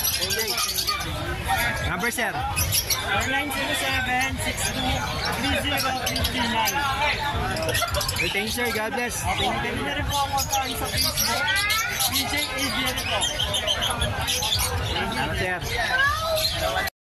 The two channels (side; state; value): both; identical; correlation 1.00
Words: Okay. Number sir 0907-62-30-59. thank you sir, God bless. Thank you. Pwede na rin po ako sa Facebook. PJ Adrian ito. Salamat sir.